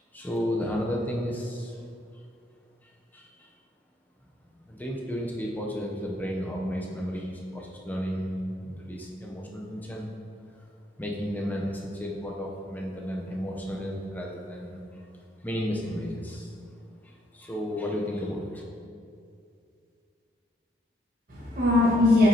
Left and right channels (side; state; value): both; normal; correlation 0.72